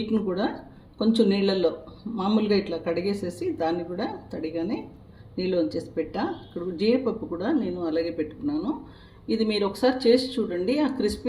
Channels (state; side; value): identical; both; correlation 1.00